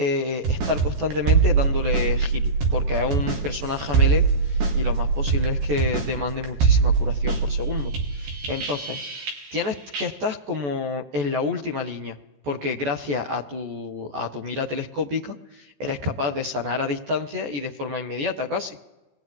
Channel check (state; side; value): late; left; 14 ms